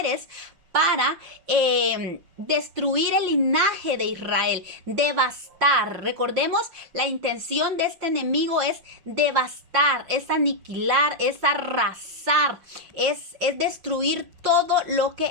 para destruir el linaje de Israel, devastar. Recordemos, la intención de este enemigo es devastar, es aniquilar, es arrasar, es destruir todo lo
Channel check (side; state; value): left; late; 5.7 ms